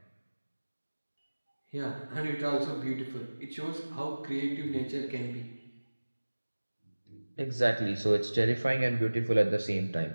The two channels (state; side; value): inverted; both; correlation -1.00